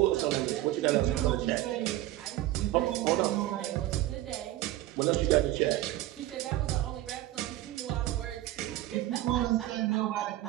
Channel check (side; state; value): left; quieter; 15.4 dB